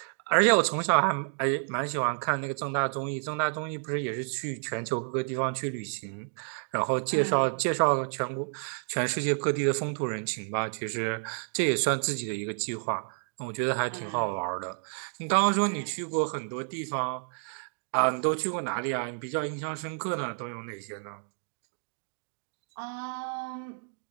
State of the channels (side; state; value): left; silent; 57 dB below the other